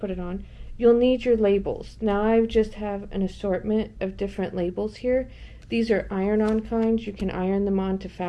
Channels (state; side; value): identical; both; correlation 1.00